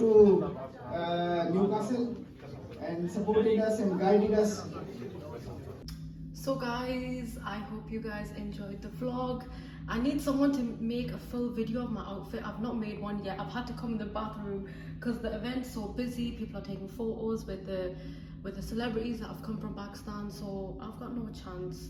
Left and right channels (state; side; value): identical; both; correlation 1.00